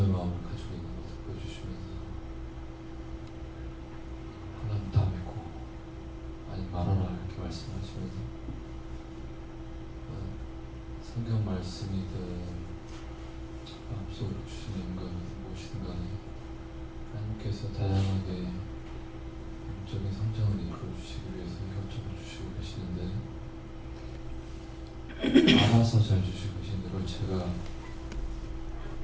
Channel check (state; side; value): identical; both; correlation 1.00